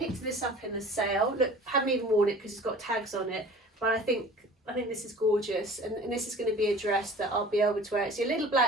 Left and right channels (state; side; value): normal; both; correlation 0.44